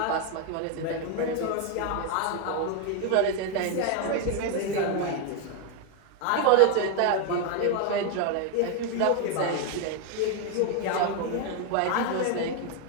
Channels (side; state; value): both; different; correlation 0.01